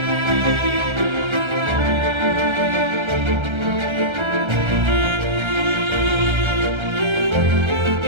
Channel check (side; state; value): left; late; 1.3 ms